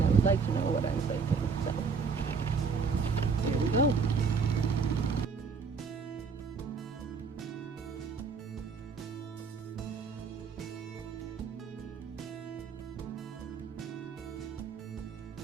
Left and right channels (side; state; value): left; quieter; 5.1 dB